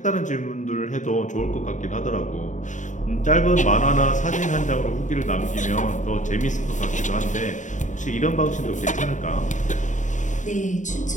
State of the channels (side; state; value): right; late; 0.36 ms